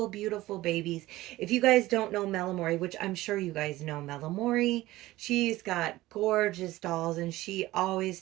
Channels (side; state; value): left; quieter; 17.3 dB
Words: beautiful babies. If you guys don't know Amorè, which I'm sure you guys know Amorè, she's got gorgeous dolls and she always